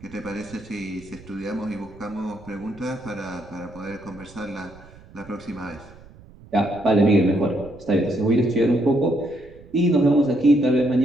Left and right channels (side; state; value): right; noise; rumble, 22 dB below the sound